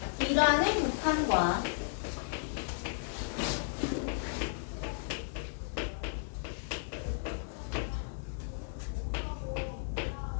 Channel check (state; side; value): silent; right; digital silence